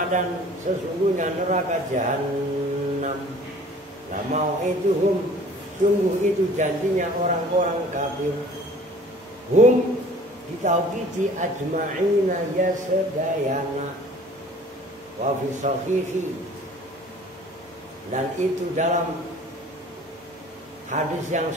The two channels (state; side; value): normal; both; correlation 0.49